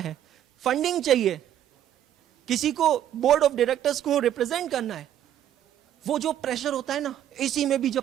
फंडिंग चाहिए, किसी को बोर्ड ऑफ डायरेक्टर्स को रिप्रेजेंट करना है। वो जो प्रेशर होता है ना, AC में भी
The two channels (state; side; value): quieter; left; 11.0 dB